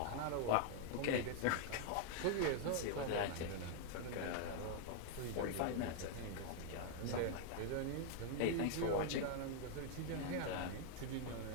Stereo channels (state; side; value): different; both; correlation 0.00